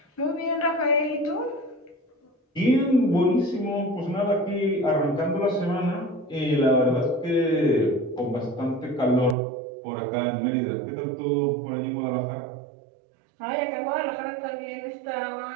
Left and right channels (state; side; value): drops out; left; at 9.3 s